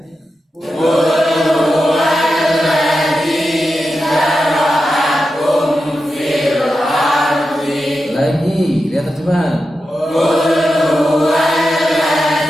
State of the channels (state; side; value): normal; both; correlation 0.90